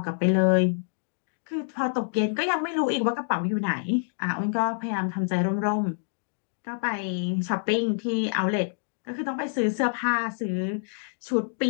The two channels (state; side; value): silent; right; digital silence